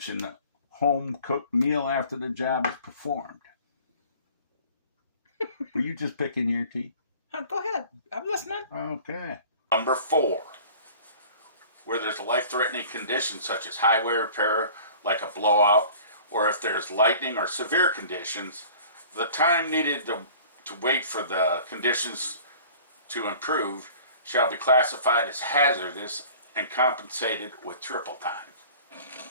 a home-cooked meal after the job is performed. Were you just picking your teeth? Go ahead. I'm listening. Okay. Number 4. Where there's a life-threatening condition such as highway repair, like a blowout, or if there's lightning or severe conditions, the time needed to wait for the conditions to improve shall be classified as hazardous and compensated with triple time.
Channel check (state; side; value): inverted; both; correlation -0.46